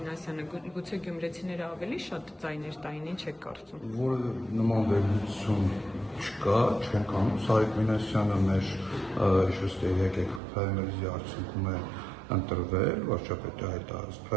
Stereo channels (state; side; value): drops out; left; at 10.4 s